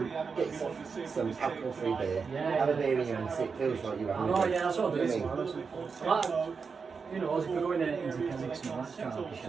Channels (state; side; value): quieter; left; 5.3 dB